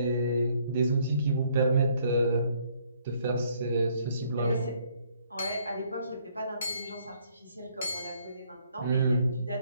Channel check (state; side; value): inverted; both; correlation -0.66